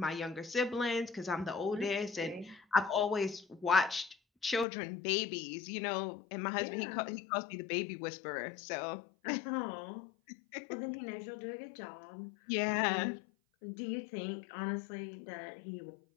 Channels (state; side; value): drops out; right; at 4.7 s